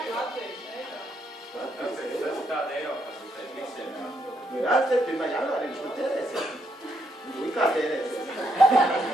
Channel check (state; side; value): normal; both; correlation 0.76